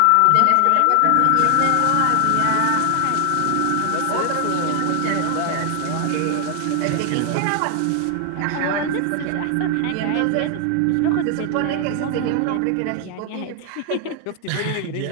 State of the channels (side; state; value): both; different; correlation 0.00